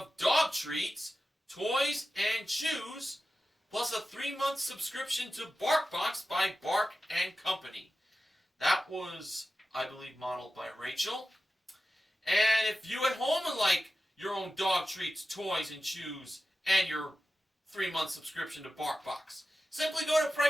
dog treats, toys, and chews, plus a 3-month subscription to BarkBox by Bark and Company. That was, I believe, modeled by Rachel. And if you at home would like your own dog treats, toys, and chews, and your 3-month subscription to BarkBox, simply go to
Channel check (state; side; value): normal; both; correlation 0.93